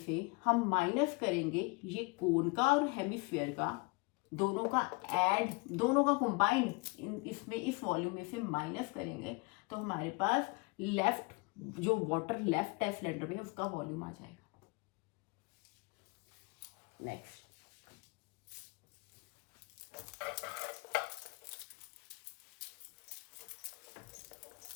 हम माइनस करेंगे ये कोन का और हेमिस्फीयर का, दोनों का ऐड, दोनों का कंबाइंड इसमें, इस वॉल्यूम में से माइनस करेंगे, तो हमारे पास लेफ्ट, जो वाटर लेफ्ट है सिलेंडर में, उसका वॉल्यूम आ जाएगा। Next,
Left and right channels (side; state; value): right; quieter; 28.9 dB